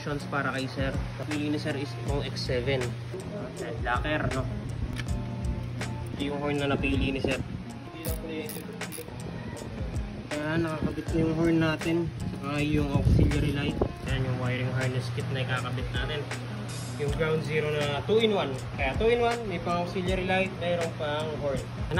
para kay sir. Napili ni sir is itong X7. Yan, locker, no? Ito yung horn na napili ni sir. Ayan, nakakabit na yung horn natin. Saka yung auxiliary light. Ayan yung wiring harness kit na ikakabit natin. Yung ground zero na 2-in-1. Kaya 2-in-1, may pang auxiliary light, mayroong pang horn.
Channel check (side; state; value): both; identical; correlation 1.00